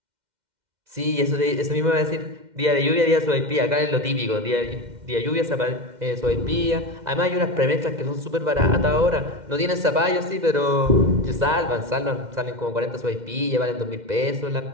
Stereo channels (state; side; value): late; left; 2.1 ms